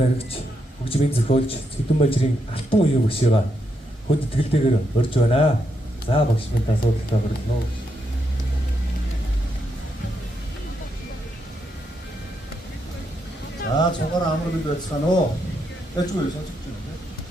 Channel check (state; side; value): normal; both; correlation 0.80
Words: хөгжмийн зохиолч, Цэдэн бажрын алтан үеийн багшгаа хөд итгэлтэйгээр урьж байна. За багш минь асуудалтай хүргэнэ үү. За цугаар амар бид байцгаана уу. Тэжгүй сонсож